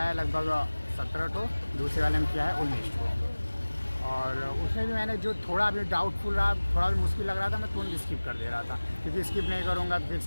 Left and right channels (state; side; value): inverted; both; correlation -1.00